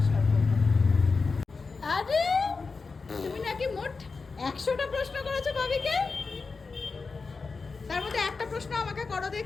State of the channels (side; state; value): right; quieter; 4.4 dB